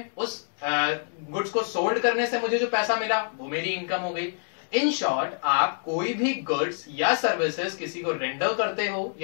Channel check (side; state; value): right; silent; digital silence